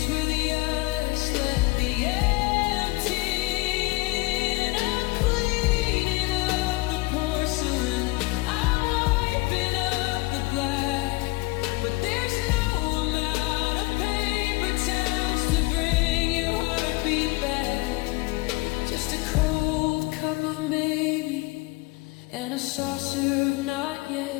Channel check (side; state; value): right; quieter; 23.3 dB